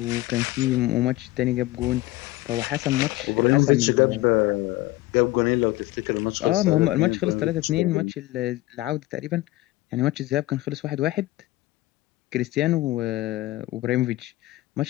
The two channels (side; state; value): right; quieter; 18.1 dB